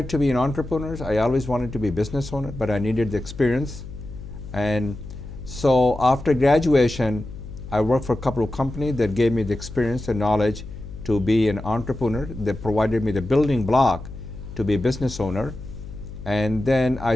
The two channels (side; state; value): left; noise; hum, 12 dB below the sound